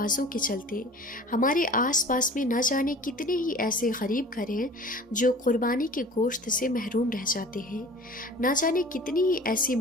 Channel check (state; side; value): normal; both; correlation 0.43